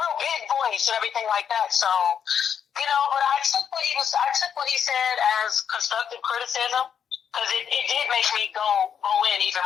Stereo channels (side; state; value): right; quieter; 7.9 dB